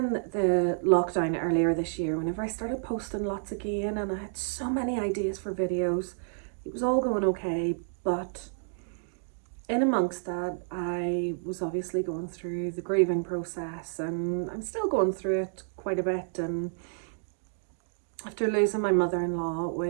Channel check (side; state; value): left; silent; digital silence